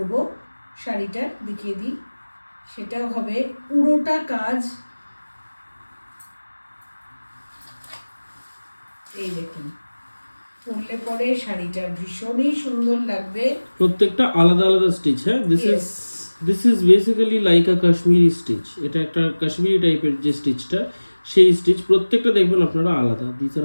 শাড়িটা দেখিয়ে দিই, সেটাও হবে পুরোটা কাজ। এই দেখুন, পরলে পরে শাড়িটা ভীষণই সুন্দর লাগবে। প্রত্যেকটা আলাদা আলাদা স্টিচ। হ্যাঁ, this is basically like a Kashmiri stitch. এটা একটা কাশ্মীরি টাইপের যে স্টিচটা, সেই স্টিচ প্রত্যেকটা দেখবেন আপনারা আলাদা। This are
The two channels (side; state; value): both; inverted; correlation -1.00